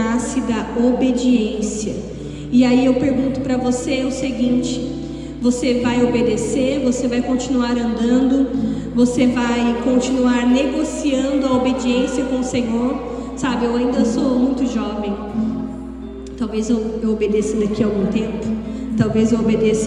da obediência. E aí eu pergunto para você o seguinte: você vai obedecer? Você vai continuar andando? Você vai continuar negociando a obediência com o Senhor? Sabe, eu ainda sou muito jovem. Talvez eu obedeça daqui a algum tempo. Talvez eu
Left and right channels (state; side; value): identical; both; correlation 1.00